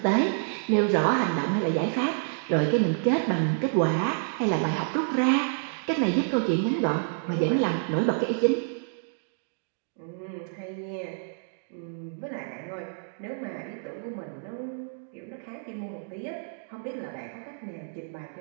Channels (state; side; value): silent; left; digital silence